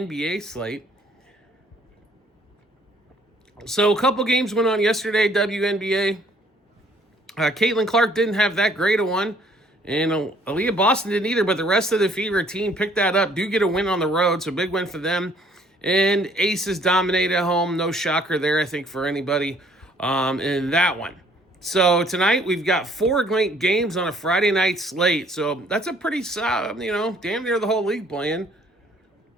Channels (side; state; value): both; normal; correlation 0.61